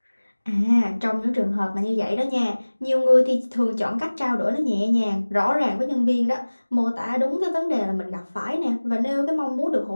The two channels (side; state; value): both; inverted; correlation -1.00